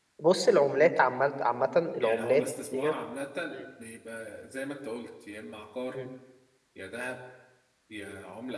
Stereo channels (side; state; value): both; identical; correlation 1.00